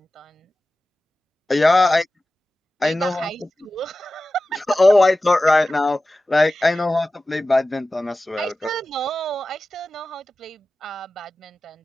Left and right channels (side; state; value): both; normal; correlation 0.95